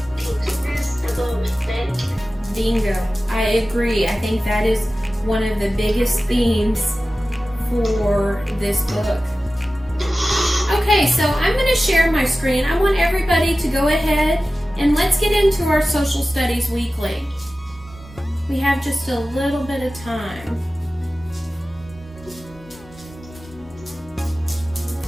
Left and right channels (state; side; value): normal; both; correlation 0.95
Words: about respect. Bingo. I agree. I think that is one of the biggest themes for this book. Okay, so I'm going to share my screen. I want everybody to go ahead and let's get into our social studies weekly. We have just a little bit of time.